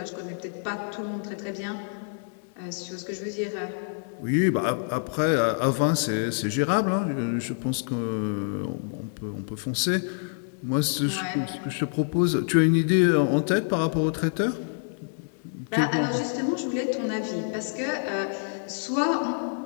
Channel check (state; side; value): silent; right; 60 dB below the other